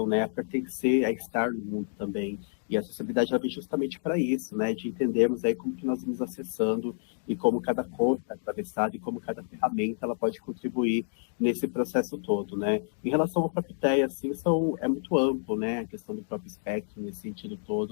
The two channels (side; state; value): right; silent; digital silence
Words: né, a pertencer, a estar no mundo também. E a acessibilidade ela vem justamente para isso, né, de entendermos aí como que nós vamos acessando e como cada cor está atravessada e como cada ferramenta ela pode contribuir nesse processo todo, né. Em relação ao próprio TEA, assim, é muito amplo, né, a questão do próprio espectro nesse sentido